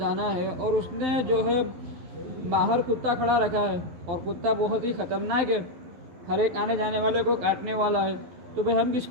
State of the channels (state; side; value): late; left; 11 ms